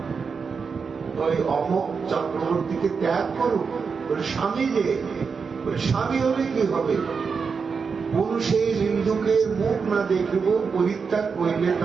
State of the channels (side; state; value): left; quieter; 5.5 dB